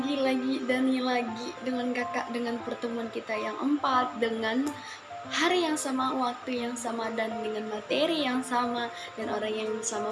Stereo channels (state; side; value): identical; both; correlation 1.00